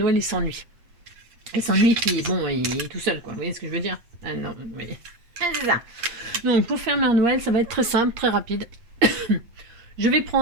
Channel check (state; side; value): late; left; 8.5 ms